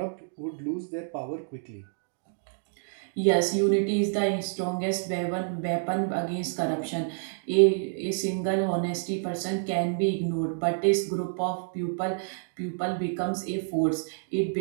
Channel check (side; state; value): left; silent; digital silence